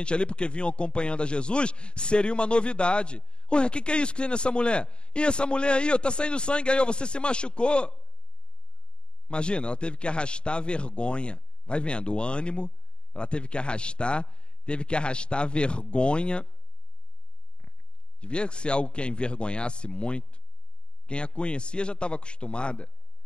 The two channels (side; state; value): right; late; 0.052 ms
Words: ali, porque vinham acompanhando a Jesus, seria uma novidade. Ué, o que é isso que tem nessa mulher? E essa mulher aí, está saindo sangue aí, você se machucou. Imagina, ela teve que arrastar a vergonha. Vai vendo, o ânimo, ela teve que arrastar a vergonha. Devia ser algo que a envergonhasse muito. Quem a conhecia já estava acostumada.